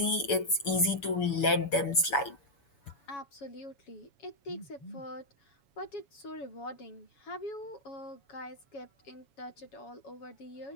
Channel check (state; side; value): late; right; 7.5 ms